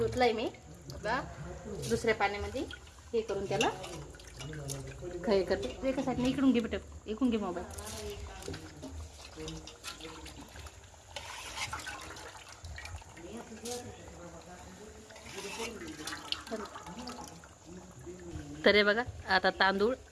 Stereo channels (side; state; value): both; identical; correlation 1.00